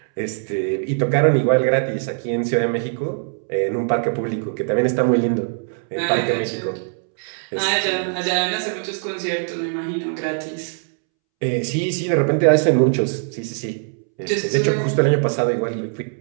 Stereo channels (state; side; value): silent; left; 65 dB below the other